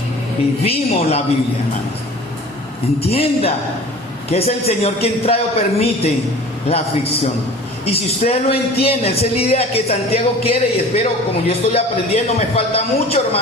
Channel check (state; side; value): normal; both; correlation 0.42